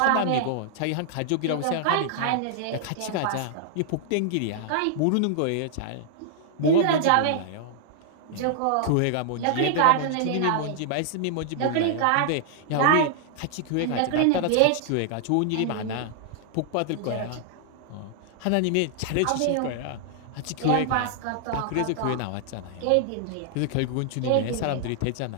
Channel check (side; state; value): both; different; correlation -0.01